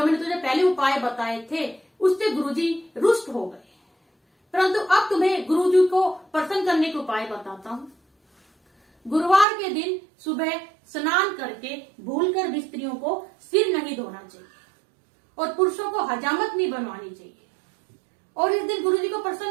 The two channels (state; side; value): drops out; left; at 9.5 s